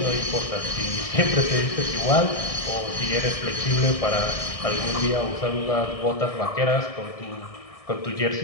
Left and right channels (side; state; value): right; late; 1.6 ms